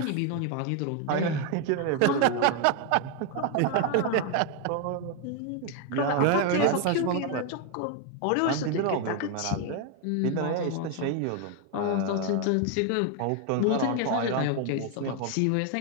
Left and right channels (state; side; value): different; both; correlation 0.01